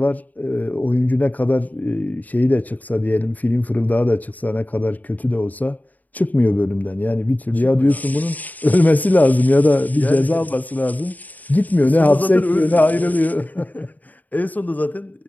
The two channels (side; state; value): right; late; 0.079 ms